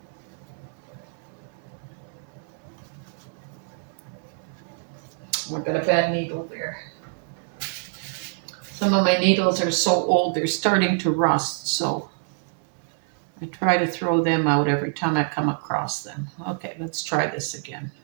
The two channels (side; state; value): left; silent; digital silence